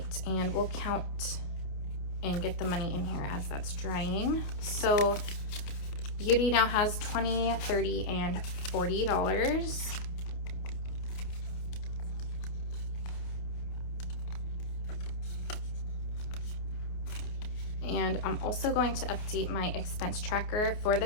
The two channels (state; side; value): late; right; 28 ms